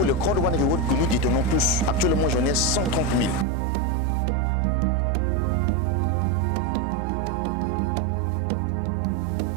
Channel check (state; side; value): drops out; left; at 3.5 s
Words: le Crowd1 Reward que nous détenons tous. Actuellement, j'en ai 130 000. Ça prend de la valeur. La valeur actuelle d'un Crowd1 Reward, c'est 2 euros.